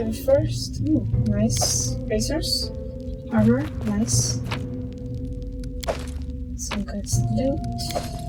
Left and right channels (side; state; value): both; identical; correlation 1.00